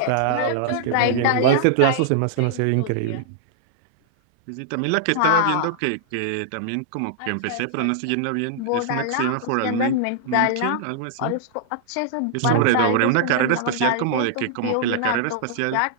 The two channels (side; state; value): both; different; correlation -0.01